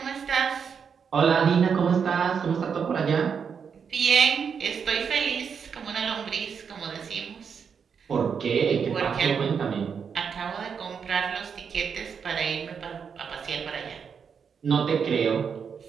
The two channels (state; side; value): quieter; left; 6.6 dB